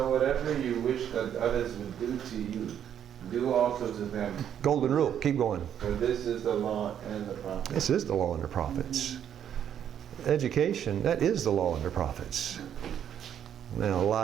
whatever you wish that others would do to you, do also to them. Golden rule. Keep going. For this is the law and the prophets. This is the law and the prophets. Education, that is the law and the prophets. Now,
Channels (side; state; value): left; quieter; 9.4 dB